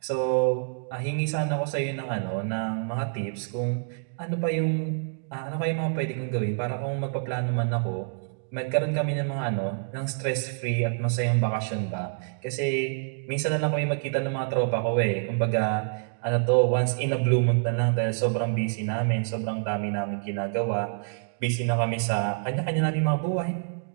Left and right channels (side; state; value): left; silent; digital silence